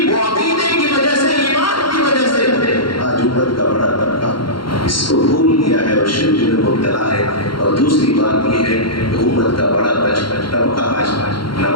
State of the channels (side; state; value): right; late; 0.73 ms